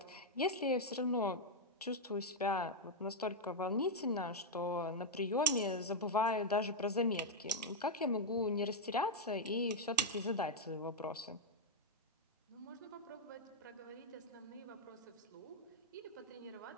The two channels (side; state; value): both; normal; correlation 0.00